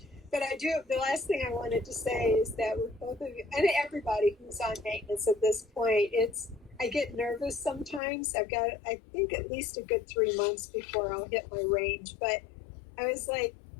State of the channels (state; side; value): drops out; right; at 8.0 s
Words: But the last thing I wanted to say is that with both of you, and everybody who's on maintenance at this point, I get nervous sometimes. I've got, I think, at least a good 3 months before I'll hit my range. But I was like,